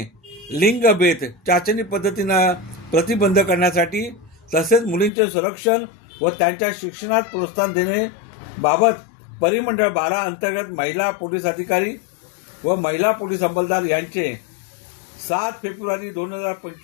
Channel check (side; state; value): right; drops out; at 5.1 s